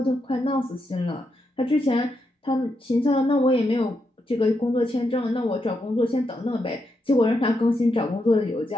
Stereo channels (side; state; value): both; normal; correlation 0.82